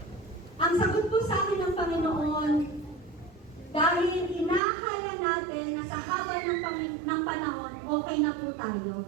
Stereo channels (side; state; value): left; drops out; at 4.6 s